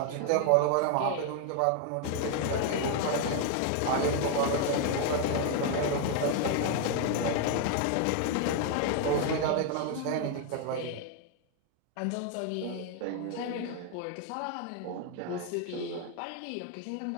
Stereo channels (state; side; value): different; both; correlation 0.01